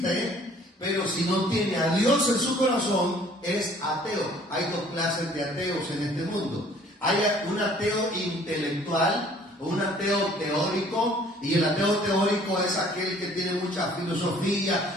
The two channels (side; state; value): both; normal; correlation 0.55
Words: pero si no tiene a Dios en su corazón, es ateo. Hay dos clases de ateos en este mundo. Hay un ateo intelectual, un ateo teórico, y el ateo teórico es aquel que tiene mucha